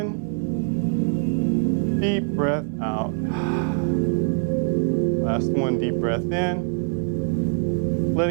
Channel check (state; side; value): silent; left; 63 dB below the other